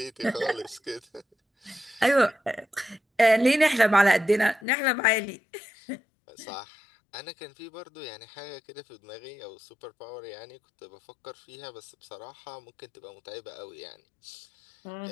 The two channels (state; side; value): drops out; right; at 4.6 s